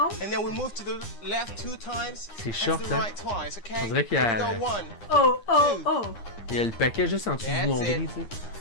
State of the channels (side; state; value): right; late; 9.8 ms